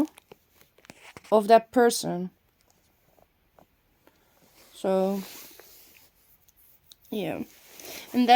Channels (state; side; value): identical; both; correlation 1.00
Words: of that person. So yeah, and